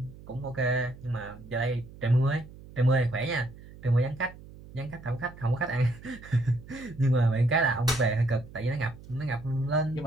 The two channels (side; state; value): right; noise; hum, 18 dB below the sound